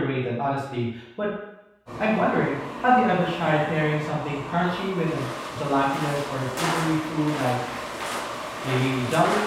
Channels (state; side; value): identical; both; correlation 1.00